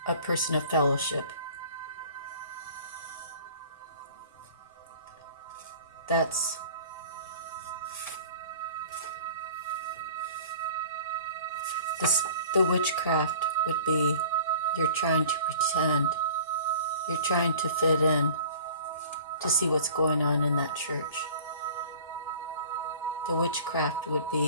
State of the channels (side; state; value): both; inverted; correlation -0.45